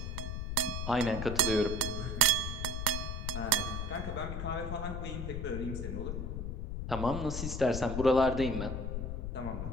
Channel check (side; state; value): left; noise; rumble, 3 dB below the sound